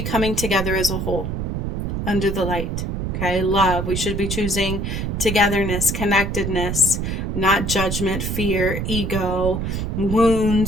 coming together as a whole under the light. Okay, love. We should be choosing togetherness, connectedness, not judgment, fear, ego,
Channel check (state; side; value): noise; right; rumble, 2 dB below the sound